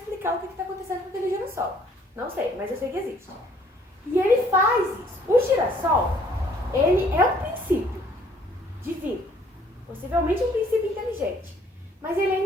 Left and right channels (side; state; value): both; normal; correlation 0.61